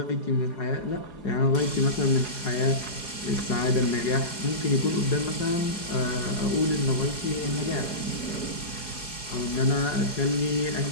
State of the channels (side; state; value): right; late; 4.8 ms